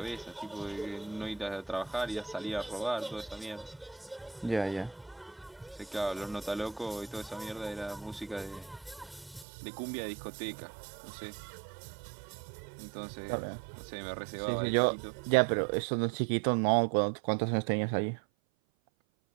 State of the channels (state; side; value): drops out; left; at 9.5 s